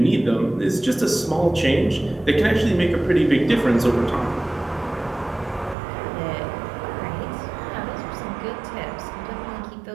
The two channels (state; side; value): drops out; left; at 5.8 s